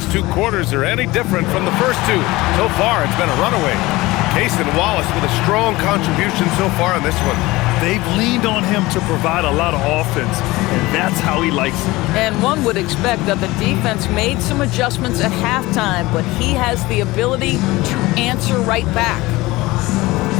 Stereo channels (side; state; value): right; quieter; 20.1 dB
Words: two quarters are any different from the first two. So far, it's been a runaway. Cason Wallace with a strong contribution so far in this one. They've leaned on him to provide a lot of offense, and that's how he likes it. And one would expect that the defense made some adjustments at halftime, but he has the ability to answer right back.